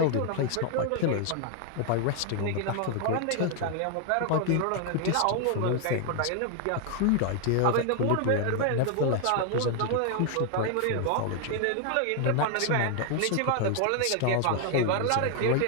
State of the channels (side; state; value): both; different; correlation 0.00